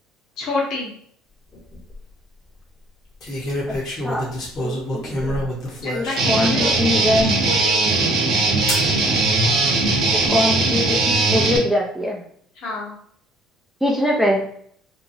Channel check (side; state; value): both; normal; correlation 0.60